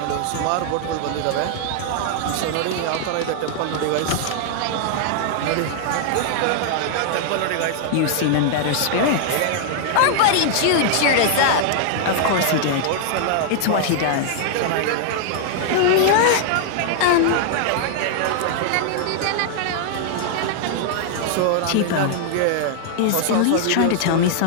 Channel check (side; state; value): both; different; correlation 0.00